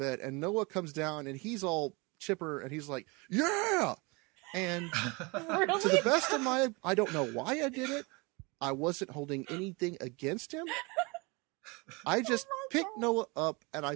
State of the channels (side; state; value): left; quieter; 27.7 dB